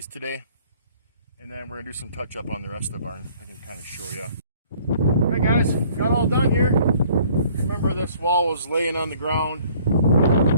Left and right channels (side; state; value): both; inverted; correlation -0.57